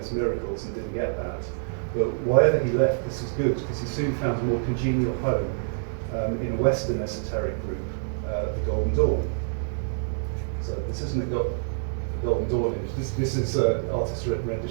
miracles and didn't get that. But wherever he left, this was good, because he soon found a more congenial home in a Western esoteric group, the Golden Dawn. So this isn't a Golden Dawn image. This is an artist's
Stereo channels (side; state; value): left; silent; digital silence